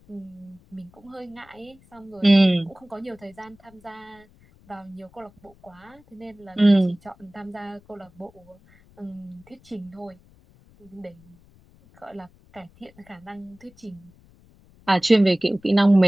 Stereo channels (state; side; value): noise; left; rumble, 28 dB below the sound